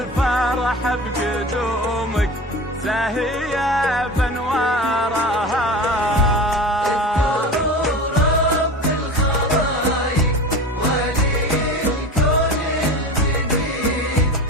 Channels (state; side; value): normal; both; correlation 0.31